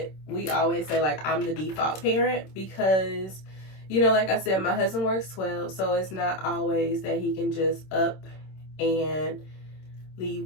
we always say, like, I'm the default parent because, you know, like I said, my husband works 12, so it's not always that he can just up and leave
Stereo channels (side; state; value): right; late; 26 ms